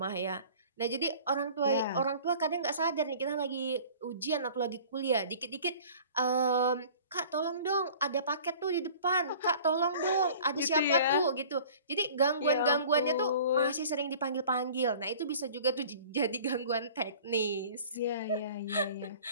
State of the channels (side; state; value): both; inverted; correlation -0.46